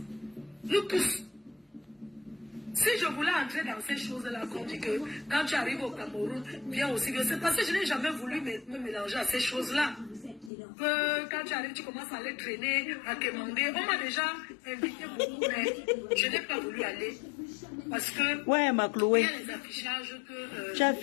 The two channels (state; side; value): drops out; right; at 10.5 s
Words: Nous tous. Si je voulais entrer dans ces choses-là, qu'on dit que quand tu arrives au Cameroun, viens aussi, c'est parce que je n'ai jamais voulu me mélanger à ces choses-là. Que quand tu arrives, tu commences à aller traîner, à demander. On m'a déjà invité beaucoup, mais je n'ai pas voulu aller. Parce que Ouais, ma il y Chloé. a les affichages que Tu as